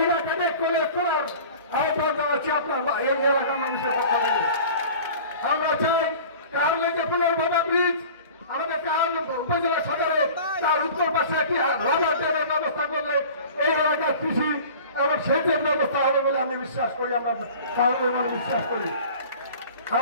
ক্যাডেট কলেজ করার আহ্বান জানাচ্ছি আপনার এই এলাকার মানুষের পক্ষ থেকে। আমরা চাই কারণে যে পুনর্ভবা ব্রিজ আমাদের উপজেলা সদরে তার উত্তর পাশে একটি রাবার ড্যামের ব্যবস্থা করলে এই এলাকার কৃষি এবং সেচের ব্যবস্থা হবে বলে আমি বিশ্বাস করি। আমরা কারণের মানে বিশ্বাস করি।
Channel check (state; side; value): inverted; both; correlation -0.42